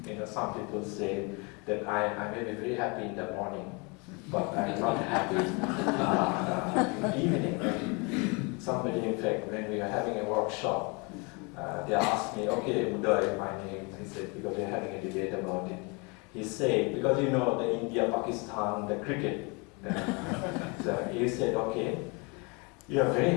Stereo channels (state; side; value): quieter; right; 30.6 dB